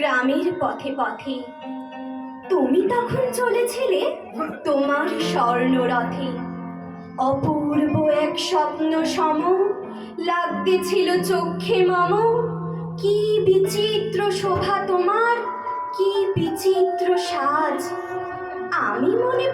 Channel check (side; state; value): both; identical; correlation 1.00